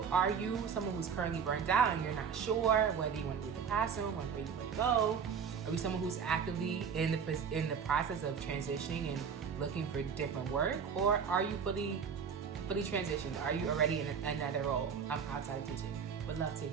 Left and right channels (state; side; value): quieter; left; 6.7 dB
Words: are you someone who's currently burned out and you're not sure whether you want to leave the classroom or where you want to go? Are you someone who's actively in the process of transitioning and looking for different work? Or are you fully transitioned? Are you already in another role outside of teaching? Would love to